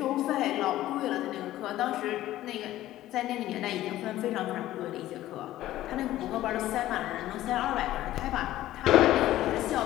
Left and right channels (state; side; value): quieter; right; 14.6 dB